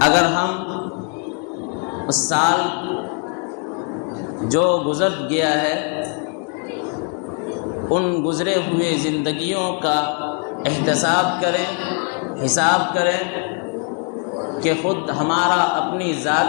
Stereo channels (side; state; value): right; quieter; 39.6 dB